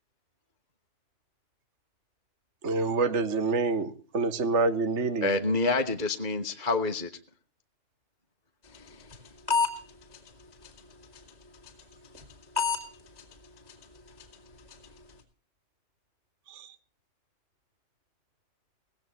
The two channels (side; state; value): left; late; 2.3 ms